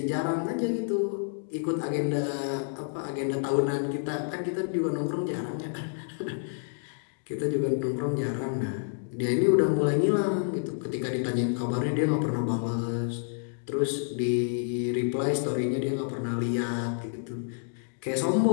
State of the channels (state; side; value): silent; right; digital silence